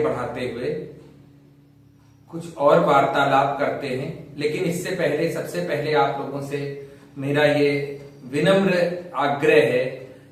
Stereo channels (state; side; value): identical; both; correlation 1.00